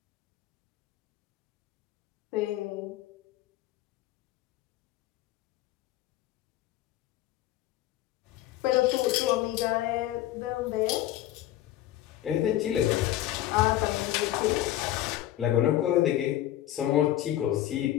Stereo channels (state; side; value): quieter; right; 13.6 dB